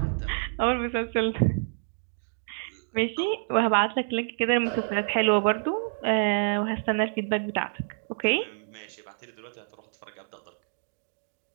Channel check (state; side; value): silent; left; digital silence